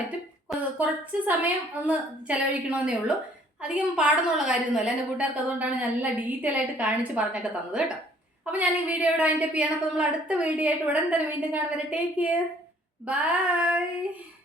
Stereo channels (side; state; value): both; normal; correlation 0.59